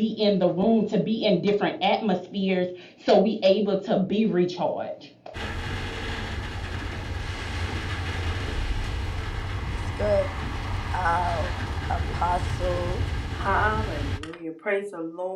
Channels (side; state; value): both; identical; correlation 1.00